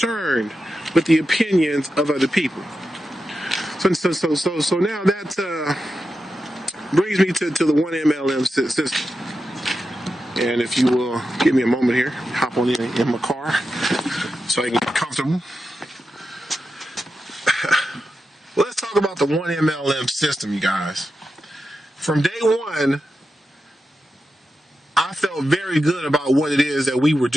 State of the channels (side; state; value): both; normal; correlation 0.90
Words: with the opinions of other people. So now that brings me to the 1MLM system. And if you will give me a moment here, hop on in my car so I can get comfortable. Let's talk about the 1MLM system, you guys. From day one, I felt very good about what it is that we were